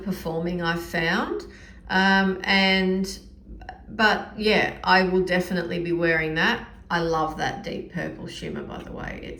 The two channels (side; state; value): both; identical; correlation 1.00